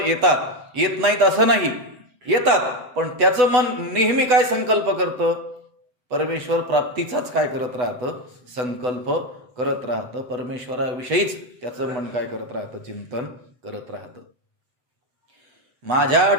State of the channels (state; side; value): late; left; 8.1 ms